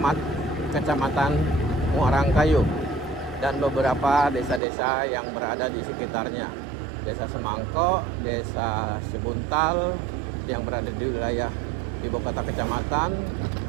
kecamatan Muarangkayu dan beberapa desa-desa yang berada di sekitarnya. Desa Semangko, Desa Sebuntal yang berada di wilayah ibu kota kecamatan,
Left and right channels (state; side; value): drops out; left; at 4.6 s